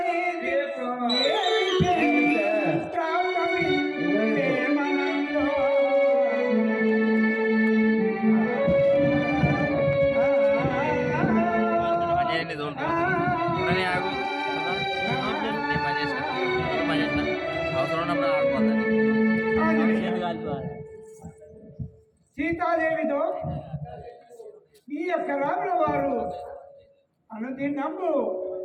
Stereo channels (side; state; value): both; identical; correlation 1.00